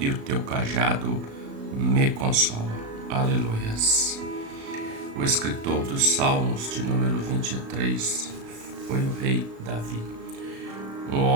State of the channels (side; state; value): left; late; 36 ms